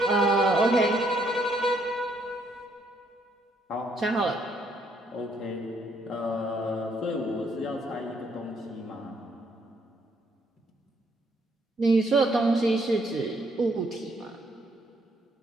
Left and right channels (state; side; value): normal; both; correlation 0.70